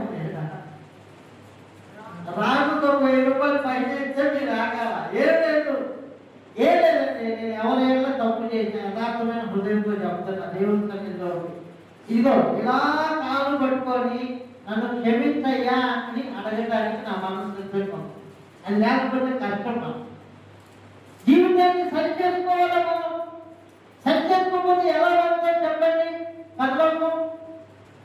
రాజుతో 1000 రూపాయలు పై చేస్తే మీరు రాగాల. ఏం లేదు, ఏం లేదండి. నేను ఎవరైనా తప్పు చేసిన యథార్థమైన హృదయంతో చెప్తున్నా దేవుని సన్నిధిలో. ఇదిగో ఇలా కాలు పట్టుకొని నన్ను క్షమించయ్యా అని అడగడానికి నా మనసు సిద్ధంగా. అది లేకపోతే కష్టం. జీవితాన్ని సరి చేసుకోవాలి. మనం సరి చేసుకోకపోతే ఎలా పడుతుంది చెప్పండి పర్లోకం.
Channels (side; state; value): both; identical; correlation 1.00